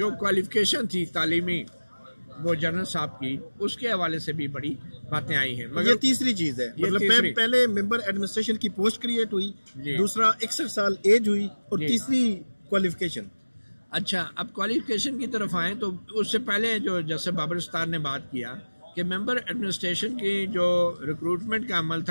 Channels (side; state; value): both; inverted; correlation -1.00